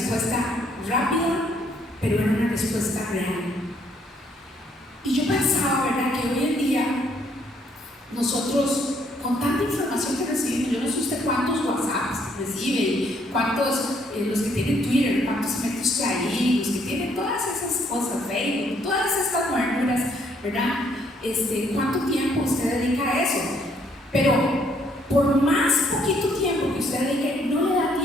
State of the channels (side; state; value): both; normal; correlation 0.68